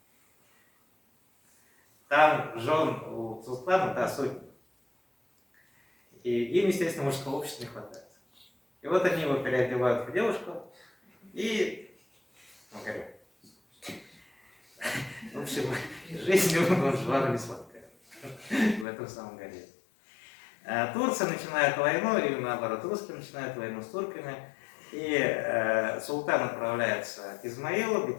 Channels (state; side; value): drops out; right; at 18.9 s